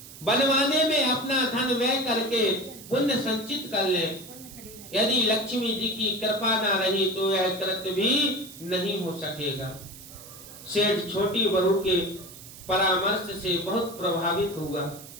बनवाने में अपना धन व्यय करके पुण्य संचित कर लें। यदि लक्ष्मी जी की कृपा ना रही तो यह कृत्य भी नहीं हो सकेगा। सेठ छोटी बहू के परामर्श से बहुत प्रभावित हुआ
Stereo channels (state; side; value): noise; right; hiss, 16 dB below the sound